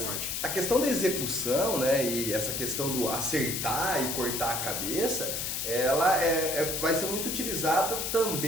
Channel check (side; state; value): left; noise; hiss, 2 dB below the sound